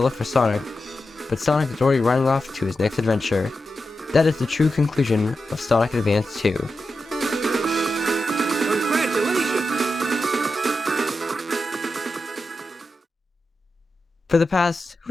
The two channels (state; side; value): normal; both; correlation 0.90